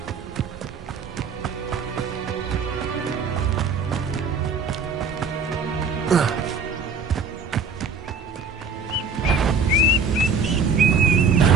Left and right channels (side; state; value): left; quieter; 4.8 dB